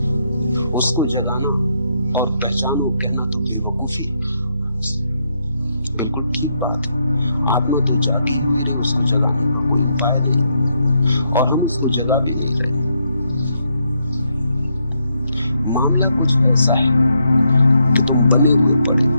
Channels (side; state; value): both; inverted; correlation -0.78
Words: उसको जगाना और पहचानो कहना तो बेवकूफी है। बिल्कुल ठीक बात है, आत्मा तो जागी हुई रही, उसको जगाने का कोई उपाय नहीं, और हम उसको जगा भी नहीं रहे। मामला कुछ ऐसा है कि तुम बने हुए पड़े,